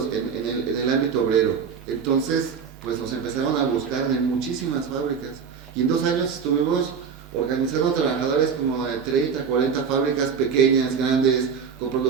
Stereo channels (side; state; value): left; quieter; 6.4 dB